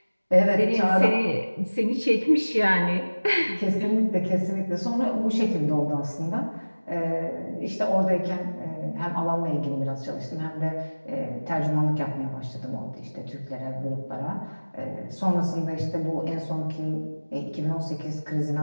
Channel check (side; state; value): both; inverted; correlation -1.00